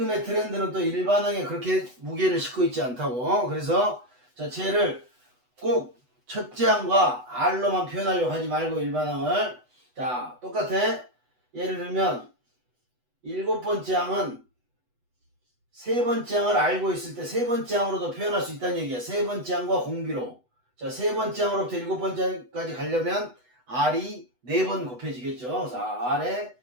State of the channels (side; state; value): left; late; 8.1 ms